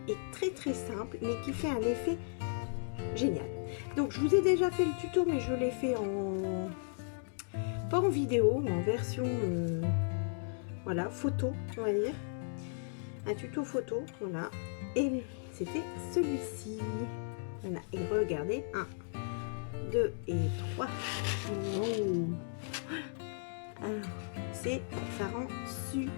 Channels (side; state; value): right; silent; digital silence